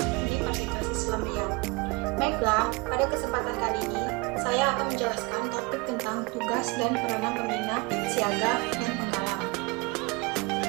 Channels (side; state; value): left; quieter; 27.0 dB